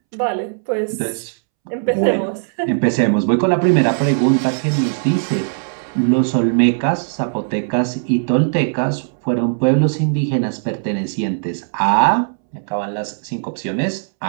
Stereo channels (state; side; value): silent; left; 67 dB below the other